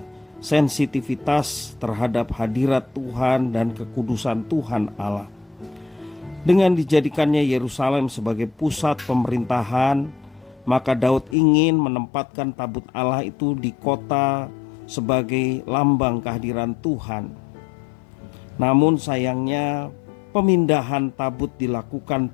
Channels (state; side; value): drops out; right; at 11.4 s